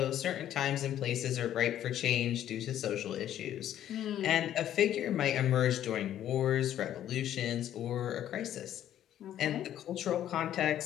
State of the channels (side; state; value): right; quieter; 11.4 dB